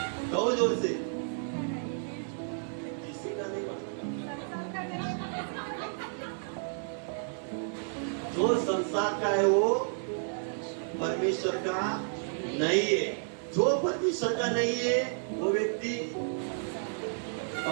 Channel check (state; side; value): silent; left; 57 dB below the other